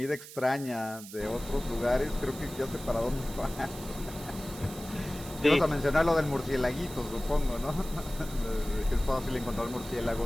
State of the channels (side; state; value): right; noise; hiss, 15 dB below the sound